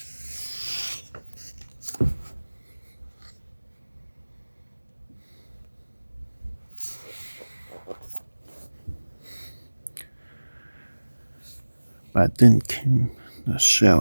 But then came the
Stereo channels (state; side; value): inverted; both; correlation -1.00